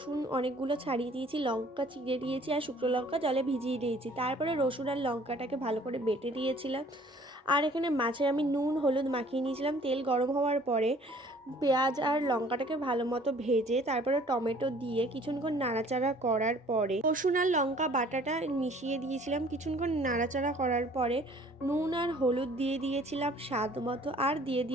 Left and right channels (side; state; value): both; normal; correlation 0.54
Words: অনেকগুলো ছাড়িয়ে দিয়েছি, লঙ্কা চিড়ে দিয়েছি আর শুকনো লঙ্কা জলে ভিজিয়ে দিয়েছি। তারপরে রসুন আর লঙ্কাটাকে ভালো করে বেটে দিয়েছিলাম। আর এখানে মাছে আমি নুন হলুদ মাখিয়ে নিয়েছিলাম। তেল গরম হওয়ার পরে পেঁয়াজ আর লঙ্কাটাকে ভালো মতো ভেজে তারপরে টমেটো দিয়ে কিছুক্ষণ নাড়াচাড়া করার পরে রসুন আর লঙ্কা বাটাটা মিশিয়ে দিয়েছিলাম। কিছুক্ষণ নাড়াচাড়া করার পরে নুন আর হলুদ দিয়ে দিয়েছিলাম স্বাদ মতো, আর দিয়ে